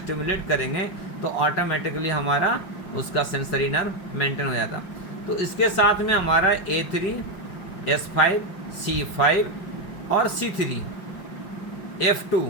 करेंगे, तो ऑटोमेटिकली हमारा उसका सेंसरी नर्व मेंटेन हो जाता। तो इसके साथ में हमारा A3, S5, C5 और C3, F2,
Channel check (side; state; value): right; late; 5.5 ms